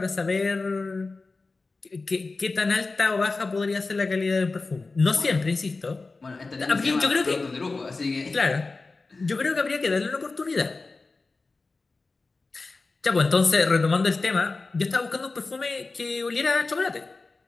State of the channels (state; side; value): quieter; right; 3.7 dB